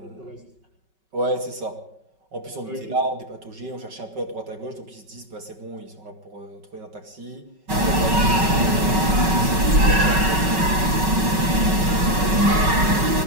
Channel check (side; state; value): left; late; 5.3 ms